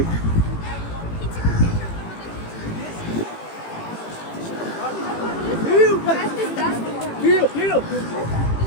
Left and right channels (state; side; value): late; right; 18 ms